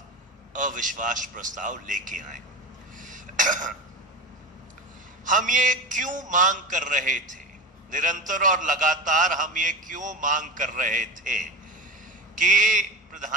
अविश्वास प्रस्ताव लेके आए। हम ये क्यों मांग कर रहे थे, निरंतर और लगातार हम ये क्यों मांग कर रहे थे कि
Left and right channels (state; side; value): normal; both; correlation 0.25